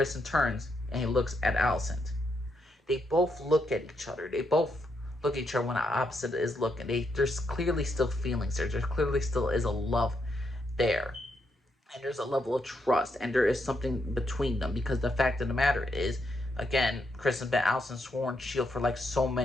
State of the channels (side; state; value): both; normal; correlation 0.79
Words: turns and he looks at Alicent. They both look at each other. They both look at each other when the opposite is looking. There's clearly still feelings there. There clearly still is a love there. And there's a level of trust, and there is something between them, because the fact of the matter is, again, Chris and Ben Allison sworn shield for like so